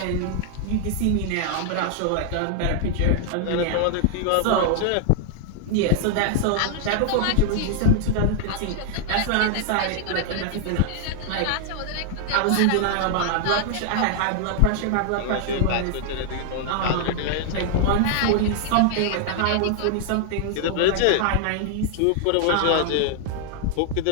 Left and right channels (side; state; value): both; different; correlation 0.00